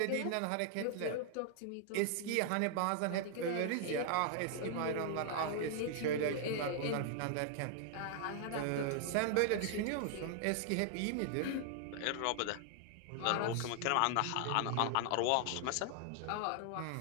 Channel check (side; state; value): both; different; correlation 0.00